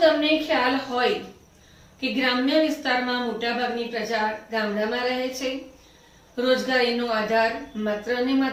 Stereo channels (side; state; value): both; identical; correlation 1.00